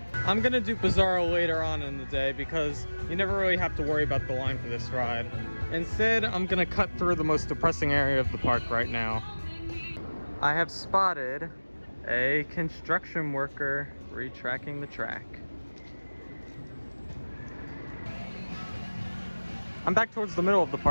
I'm gonna do Bizarro later on in the day because you never really have to worry about the line for this ride. Instead, I'm gonna cut through the most depressing area of the park right now. I have spotted a construction worker retracking the track. I'm back towards the middle of the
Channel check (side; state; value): both; inverted; correlation -1.00